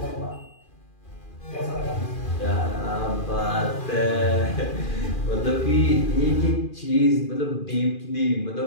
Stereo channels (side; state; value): right; late; 2.4 ms